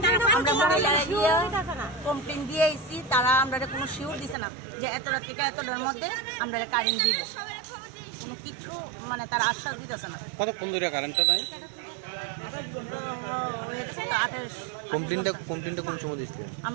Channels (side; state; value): left; drops out; at 4.4 s